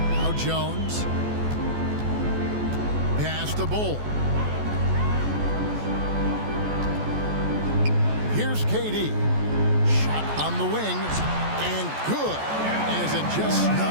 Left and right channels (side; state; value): left; late; 14 ms